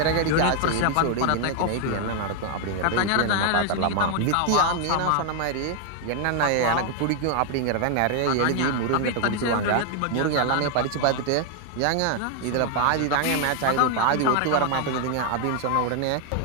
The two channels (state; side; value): different; both; correlation 0.00